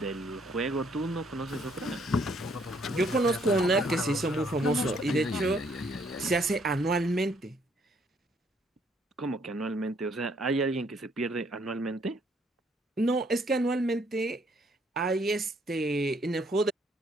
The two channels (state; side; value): normal; both; correlation 0.67